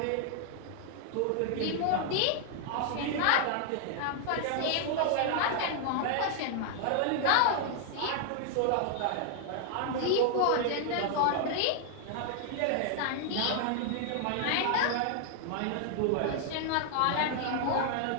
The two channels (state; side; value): different; both; correlation 0.00